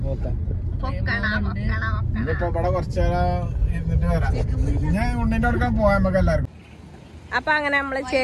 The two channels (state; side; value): identical; both; correlation 1.00